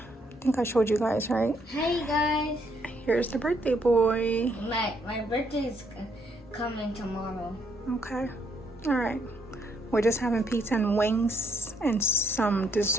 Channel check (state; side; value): normal; both; correlation 0.72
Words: think I showed you guys, right? Hey guys. Here's the birthday boy. My birthday is coming tomorrow. Okay. All right. We're just having pizza and wings and some